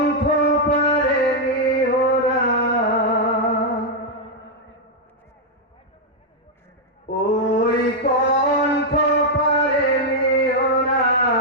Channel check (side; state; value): both; normal; correlation -0.03